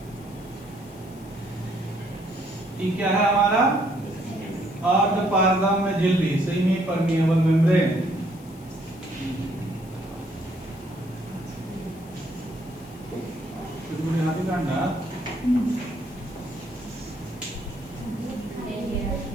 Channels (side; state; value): left; noise; hiss, 24 dB below the sound